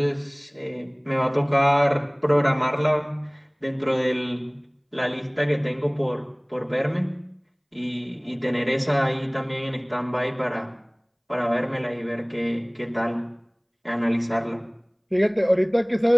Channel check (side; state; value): both; identical; correlation 1.00